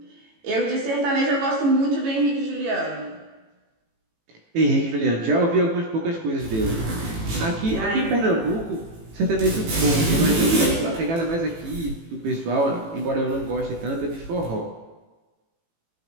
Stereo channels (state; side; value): late; left; 18 ms